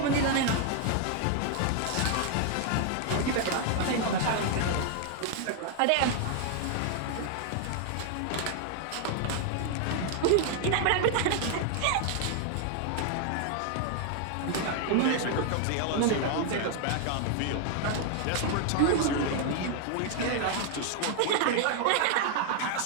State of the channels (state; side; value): different; both; correlation 0.00